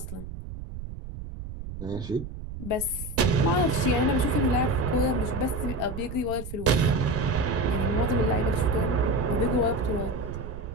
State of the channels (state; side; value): noise; right; rumble, 10 dB below the sound